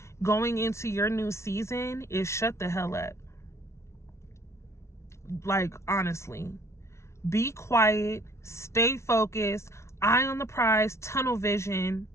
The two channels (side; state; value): right; late; 0.13 ms